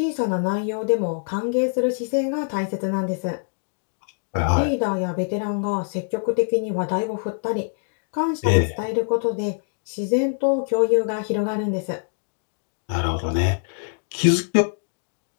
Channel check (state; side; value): silent; right; digital silence